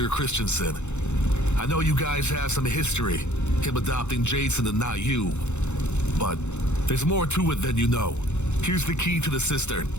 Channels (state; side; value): late; right; 0.83 ms